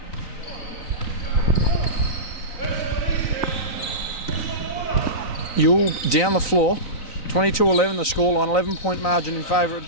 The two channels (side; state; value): right; late; 3.9 ms